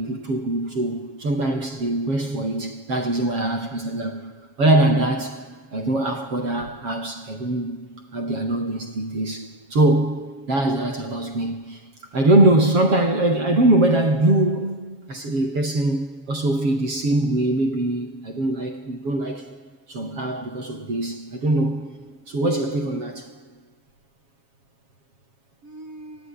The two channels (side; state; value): left; late; 7.3 ms